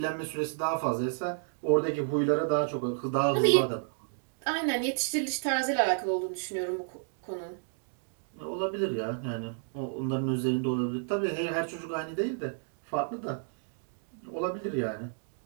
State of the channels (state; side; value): silent; left; digital silence